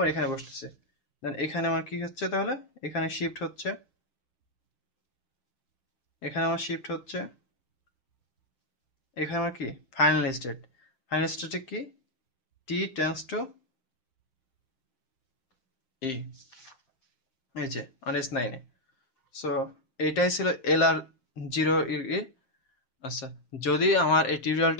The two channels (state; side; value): late; right; 7.6 ms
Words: এখানে বসতেছে। দেন এখানে আমার কি হচ্ছে তাহলে, এখানে শিফট হচ্ছে, এখানে আমার শিফট হচ্ছে, এখানে আমার কি ফাইনাল স্টেট, ফাইনাল স্টেটে কি টি টেন্স টু ই, এই যে আর S9 সো এইটাই ছিল LR0 ই। আচ্ছা, যদি আমার এই